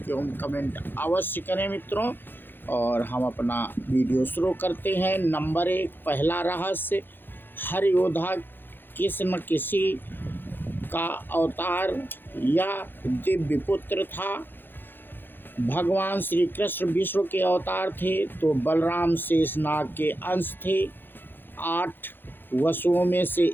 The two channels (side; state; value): right; late; 0.098 ms